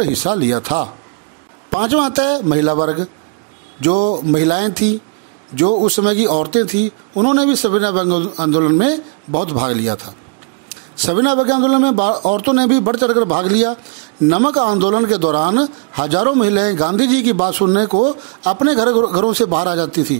हिस्सा लिया था। 5वां आता है महिला वर्ग। जो महिलाएं थी, जो उस समय की औरतें थी, उन्होंने भी सविनय अवज्ञा आंदोलन में बहुत भाग लिया था। सविनय अवज्ञा आंदोलन में औरतों ने भी बढ़ चढ़कर भाग लिया। नमक आंदोलन के दौरान हजारों महिलाएं गांधी जी की बात सुनने को अपने घरों से बाहर आ जाती थी।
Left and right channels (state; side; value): quieter; left; 36.5 dB